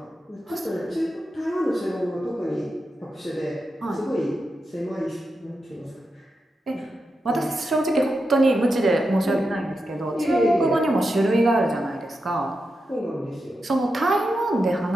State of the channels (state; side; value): normal; both; correlation 0.88